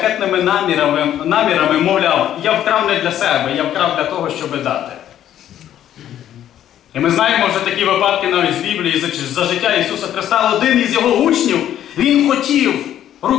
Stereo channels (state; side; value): quieter; right; 11.2 dB